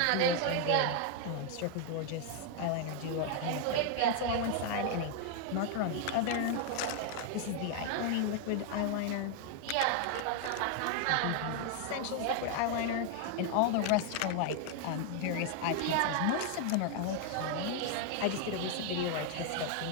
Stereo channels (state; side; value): different; both; correlation 0.00